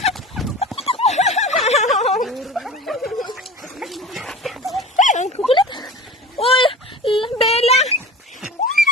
Ang kukulit! Uy! Bella!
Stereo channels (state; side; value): normal; both; correlation 0.35